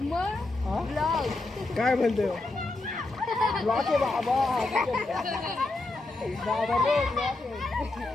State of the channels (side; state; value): right; quieter; 3.1 dB